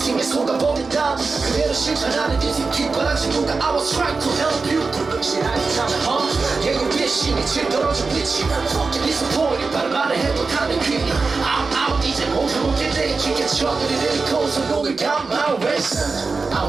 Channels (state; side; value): quieter; left; 4.2 dB